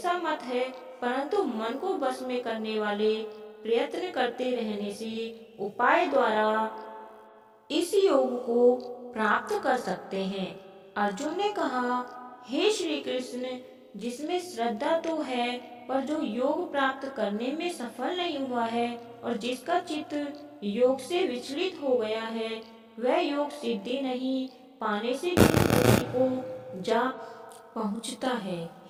मत है। परंतु मन को बस में करने वाले प्रयत्न करते रहने से उपाय द्वारा इस योग को प्राप्त कर सकते हैं। अर्जुन ने कहा, हे श्री कृष्ण, जिसमें श्रद्धा तो है पर जो योग प्राप्त करने में सफल नहीं हुआ है और जिसका चित्त योग से विचलित हो गया है, वह योग सिद्धि नहीं पाने से भी को जा पहुंचता है।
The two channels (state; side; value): identical; both; correlation 1.00